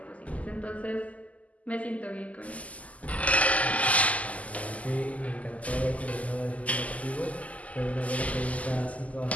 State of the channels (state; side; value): late; right; 0.071 ms